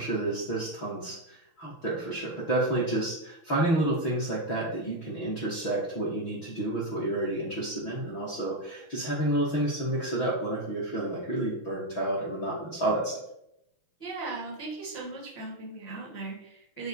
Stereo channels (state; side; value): late; right; 6.1 ms